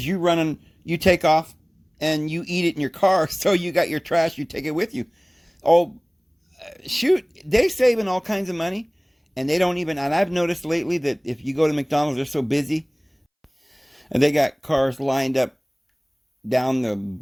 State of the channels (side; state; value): both; identical; correlation 1.00